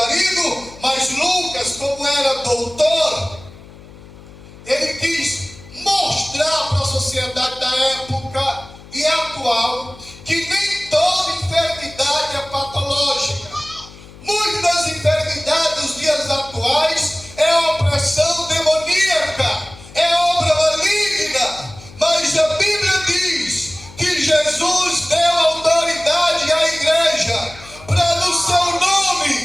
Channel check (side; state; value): left; noise; hum, 20 dB below the sound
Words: Mas Lucas, como era doutor, ele quis mostrar para a sociedade da época e atual que nem toda enfermidade é patológica. Muitas das enfermidades dos dias atuais é opressão demoníaca, é obra maligna. Mas a Bíblia diz que Jesus deu autoridade à igreja para no seu